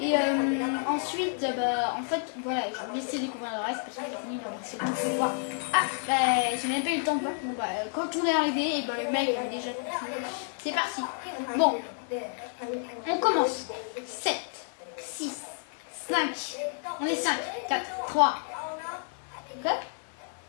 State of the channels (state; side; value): silent; right; 58 dB below the other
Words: ensuite, en fait, voilà, je vais laisser découvrir le reste parce que j'ai fini c'est bon, je vais voir. Ah, j'ai même pas eu le temps de voir. Bon, quand on est arrivé, et le mec avait déjà tout. C'est parti. Bon, on commence. 7, 6, 5. On est 5, 4, 3. Ok?